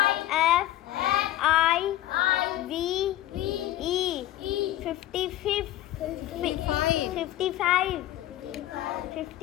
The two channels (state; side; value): quieter; right; 14.1 dB